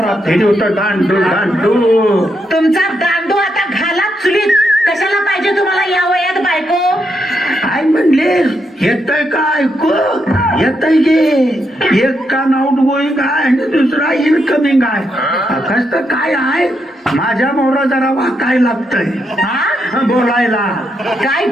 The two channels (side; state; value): both; normal; correlation 0.80